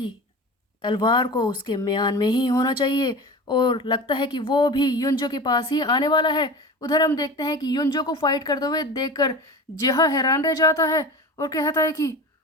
तलवार को उसके म्यान में ही होना चाहिए, और लगता है कि वो भी युंजो के पास ही आने वाला है। उधर हम देखते हैं कि युंजो को फाइट करते हुए देखकर जिहा हैरान रह जाता है और कहता है कि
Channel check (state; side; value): normal; both; correlation 0.32